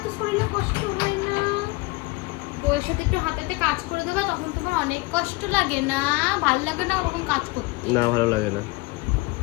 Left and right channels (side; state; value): right; quieter; 24.0 dB